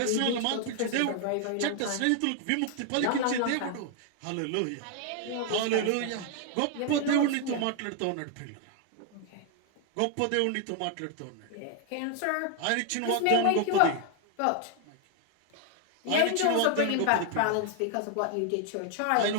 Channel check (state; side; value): different; both; correlation 0.00